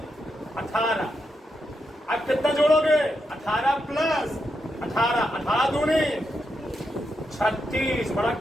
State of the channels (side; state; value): both; normal; correlation 0.84